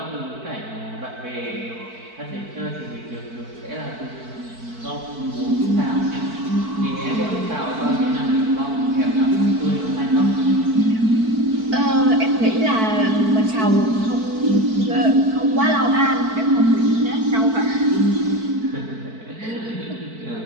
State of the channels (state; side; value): late; left; 4.5 ms